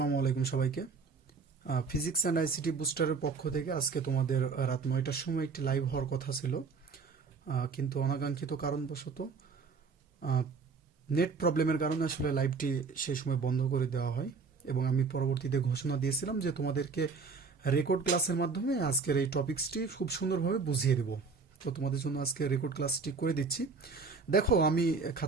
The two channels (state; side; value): quieter; left; 4.9 dB